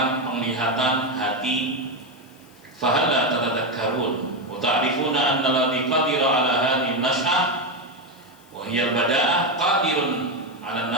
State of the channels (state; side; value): noise; left; hiss, 29 dB below the sound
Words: penglihatan, hati. Fa hal la tatadhakkarun wa ta'rifuna anna alladhi qadira 'ala hadhihi an-nash'ah wa hiya al-bada'ah qadirun 'ala